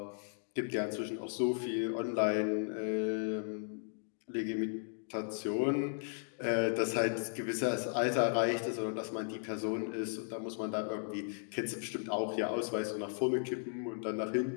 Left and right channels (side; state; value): right; silent; digital silence